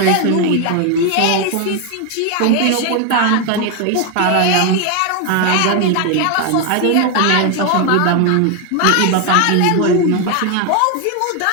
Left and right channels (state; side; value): different; both; correlation 0.01